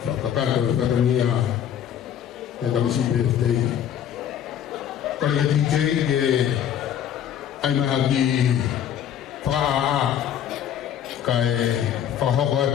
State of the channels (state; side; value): quieter; right; 9.6 dB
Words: Whakakato fatonia. E tamisi birthday. Kore ke DJ ke ai maha ki whaa kai whahoko